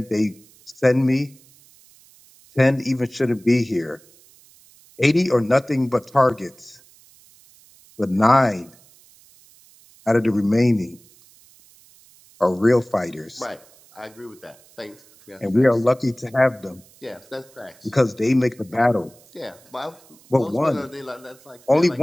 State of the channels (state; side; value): noise; right; hiss, 27 dB below the sound